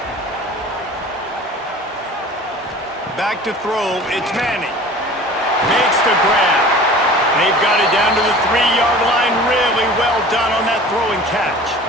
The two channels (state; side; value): normal; both; correlation 0.42